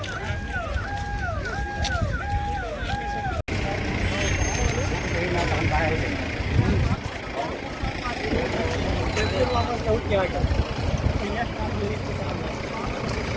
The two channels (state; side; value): identical; both; correlation 1.00